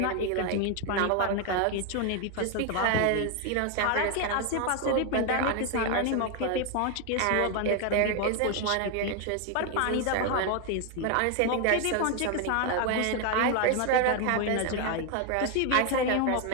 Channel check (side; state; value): both; different; correlation 0.01